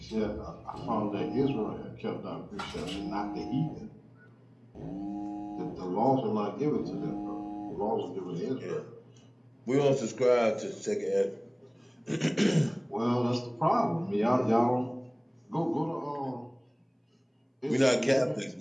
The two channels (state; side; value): identical; both; correlation 1.00